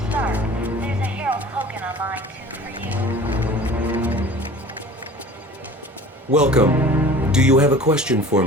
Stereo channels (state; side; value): normal; both; correlation 0.43